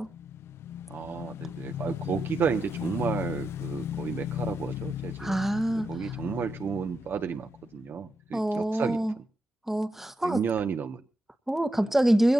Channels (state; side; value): normal; both; correlation 0.84